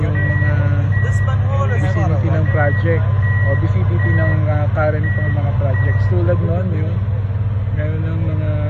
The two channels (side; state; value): both; identical; correlation 1.00